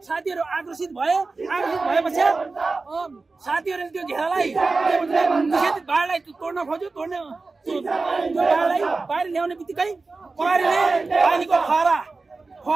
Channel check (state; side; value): quieter; left; 3.8 dB